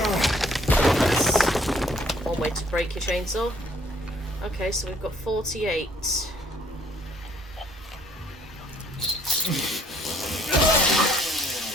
That's one way to break your chainsaw. Okay, so we've got 48.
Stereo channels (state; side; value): normal; both; correlation 0.62